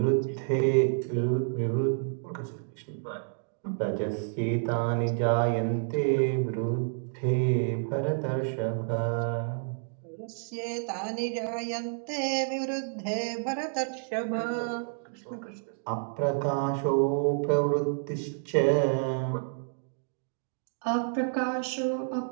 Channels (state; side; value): silent; left; digital silence